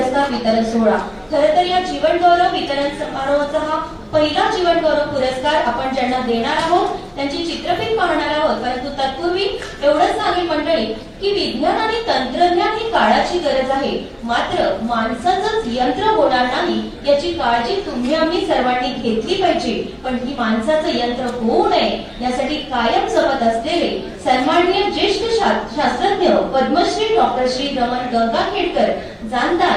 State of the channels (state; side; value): identical; both; correlation 1.00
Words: वितरण सोहळा. खरं तर या जीवन गौरव वितरण समारोहाचा हा पहिला जीवन गौरव पुरस्कार आपण ज्यांना देणार आहोत त्यांची चित्रफित पाहणार आहोत. परंतु तत्पूर्वी एवढंच सांगेल मंडळी की विज्ञान आणि तंत्रज्ञान ही काळाची गरज आहे, मात्र माणसाचंच यंत्र होणार नाही याची काळजी तुम्ही आम्ही सर्वांनी घेतली पाहिजे. पण ही माणसाचं यंत्र होऊ नये यासाठी कायम जपत असलेले सन्माननीय ज्येष्ठ शास्त्रज्ञ पद्मश्री डॉक्टर श्री रमण गंगाखेडकर